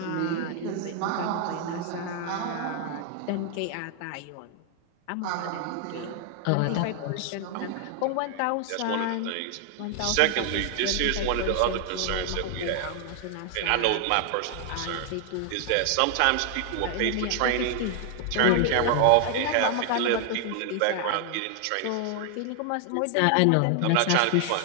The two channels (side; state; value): both; different; correlation 0.00